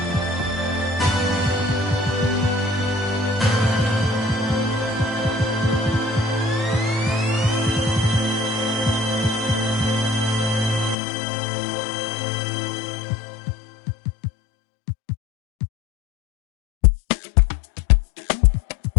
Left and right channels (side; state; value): right; drops out; at 11.0 s